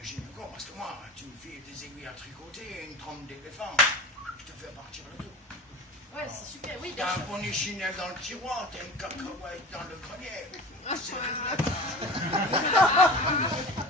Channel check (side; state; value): both; normal; correlation 0.35